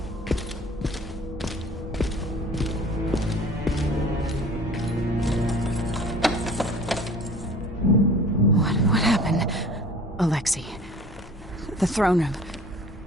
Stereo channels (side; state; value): both; normal; correlation 0.46